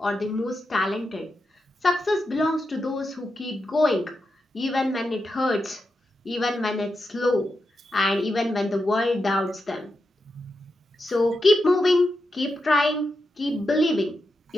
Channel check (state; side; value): normal; both; correlation 0.87